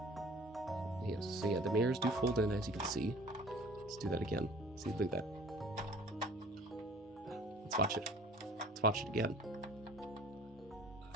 Yes, so yeah, the mirrors do fold in, as you can see. Let's do that again. See, look at that. Let's watch it. Let's watch it again.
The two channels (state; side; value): normal; both; correlation 0.47